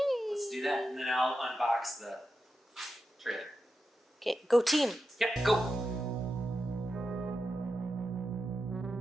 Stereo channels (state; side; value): normal; both; correlation 0.89